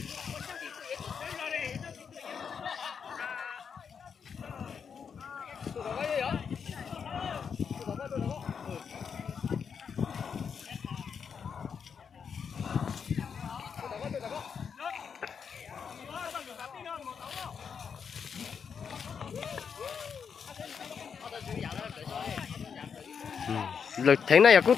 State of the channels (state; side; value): quieter; right; 6.7 dB